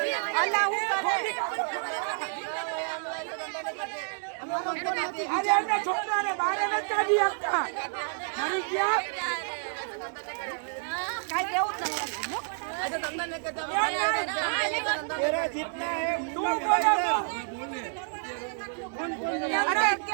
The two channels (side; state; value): left; silent; 58 dB below the other